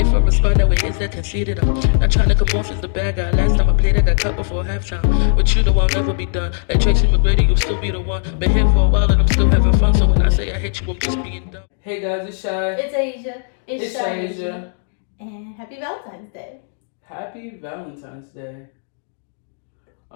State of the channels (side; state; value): right; silent; digital silence